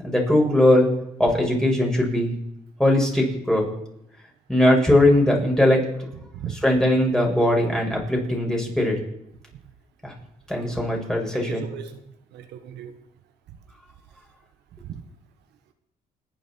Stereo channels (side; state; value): both; normal; correlation 0.81